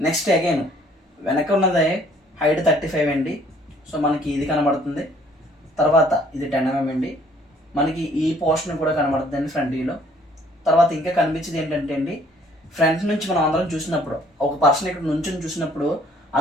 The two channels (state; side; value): normal; both; correlation 0.60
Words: నెక్స్ట్ అగైన్ వెనక ఉన్నదే హైట్ 35 అండి. సో మనకి ఇది కనబడుతుంది. తర్వాత ఇది 10 mm అండి. మనకి ఈ పోర్షన్ కూడా కనబడుతుంది అండి ఫ్రంట్ వ్యూలో. తర్వాత ఇంకా కనిపించేది ఏంటంటే అండి ఫ్రంట్ నుంచి మనం అందరం చూసినప్పుడు ఒక పర్సన్ ఇక్కడ నుంచి చూసినప్పుడు